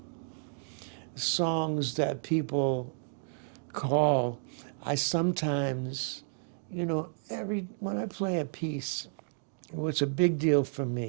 songs that people call, I sometimes, when I play a piece, it's a big deal for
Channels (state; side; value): silent; left; digital silence